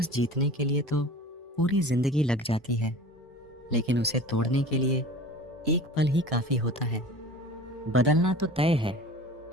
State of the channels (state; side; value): normal; both; correlation 0.39